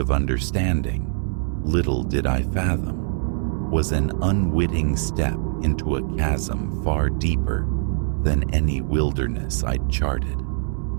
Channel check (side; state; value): left; silent; 63 dB below the other